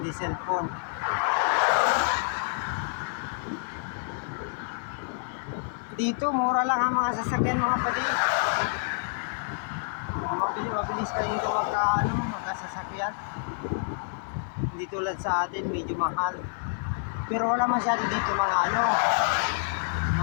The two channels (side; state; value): right; silent; 59 dB below the other